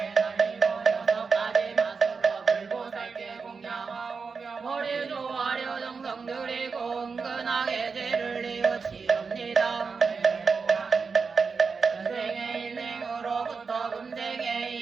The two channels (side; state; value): left; quieter; 5.1 dB